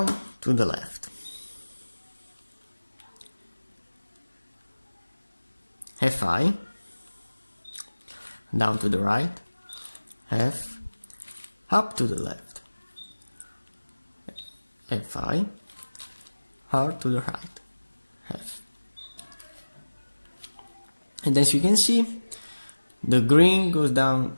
to the left. Fi, down to the right. F, up to the left. Fi, R to the right. F. And as you can see, the green goes down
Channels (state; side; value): inverted; both; correlation -1.00